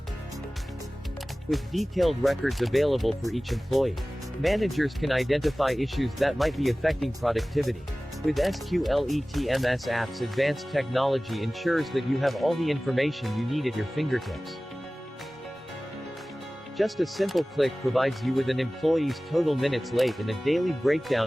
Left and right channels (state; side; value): normal; both; correlation 0.98